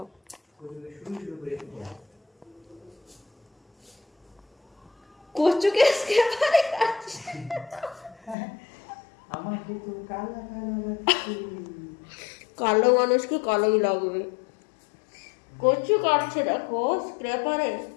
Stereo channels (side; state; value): right; drops out; at 8.3 s